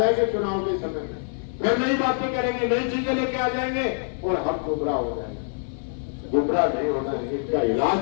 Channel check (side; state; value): right; silent; 62 dB below the other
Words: चुनाव के समय में, फिर नई बातें करेंगे, नई चीजें लेके आ जाएंगे, और हम गुमराह हो जाएंगे। गुमराह नहीं होना है, इनका इलाज